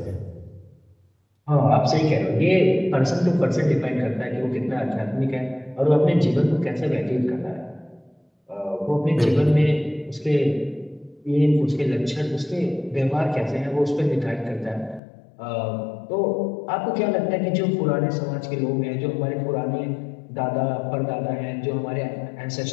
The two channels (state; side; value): drops out; right; at 15.0 s